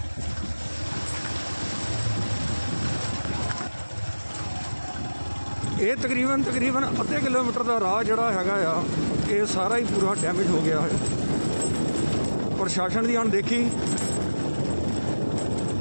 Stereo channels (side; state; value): both; inverted; correlation -1.00